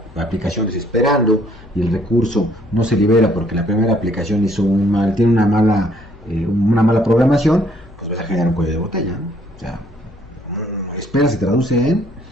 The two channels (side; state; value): left; noise; hum, 22 dB below the sound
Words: aplicaciones esperando y el recurso no se libera porque la primera aplicación tiene una mala programación, pues vas a generar un cuello de botella, ¿no? O sea, espera se traduce en